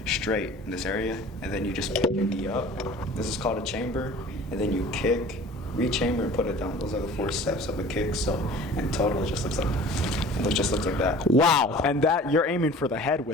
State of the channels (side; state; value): both; normal; correlation 0.45